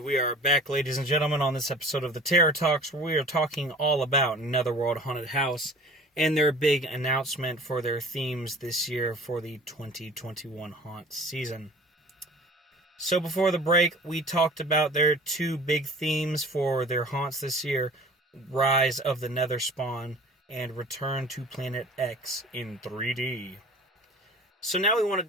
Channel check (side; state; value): both; normal; correlation 0.43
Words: we are back, ladies and gentlemen, on this episode of the Terror Talks, where we are talking all about Netherworld Haunted House and their big announcement for their themes this year for the 2021 haunt season. So before the break, we talked about their two big themes for their haunts this year: Rise of the Netherspawn and Return to Planet X in 3D. So now we want to